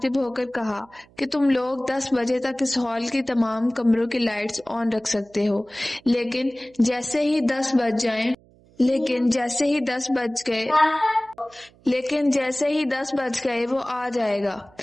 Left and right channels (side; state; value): right; noise; hum, 29 dB below the sound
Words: ہو کر کہا کہ تم لوگ 10 بجے تک اس ہال کی تمام کمروں کی لائٹس آن رکھ سکتے ہو، لیکن جیسے ہی 10 بج گئے وہ آ جائے گا